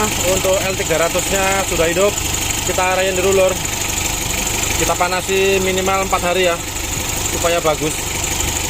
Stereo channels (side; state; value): both; identical; correlation 1.00